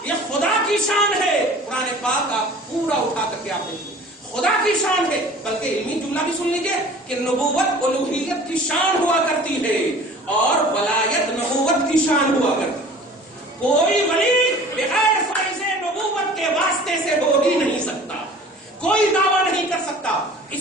یہ خدا کی شان ہے. قرآن پاک کا پورا اٹھا کر کے آپ دیکھیے خدا کی شان ہے. بلکہ علمی جملہ بھی سن لیجیے کہ نبوت الوہیت کی شان ہوا کرتی ہے اور ولایت نبوت کی شان ہوا کرتی ہے. کوئی ولی بغیر فیض نبوت کے واسطے سے ہو ہی نہیں سکتا، کوئی دعویٰ نہیں کر سکتا۔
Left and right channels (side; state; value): both; normal; correlation 0.45